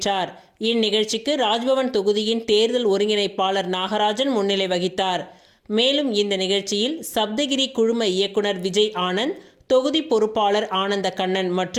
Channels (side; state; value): both; identical; correlation 1.00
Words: இந்நிகழ்ச்சிக்கு ராஜ்பவன் தொகுதியின் தேர்தல் ஒருங்கிணைப்பாளர் நாகராஜன் முன்னிலை வகித்தார். மேலும் இந்த நிகழ்ச்சியில் சப்தகிரி குழும இயக்குனர் விஜய் ஆனந்த், தொகுதி பொறுப்பாளர் ஆனந்த கண்ணன்